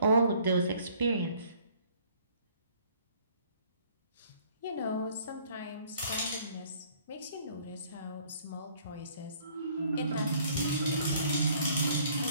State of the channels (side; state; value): both; inverted; correlation -0.59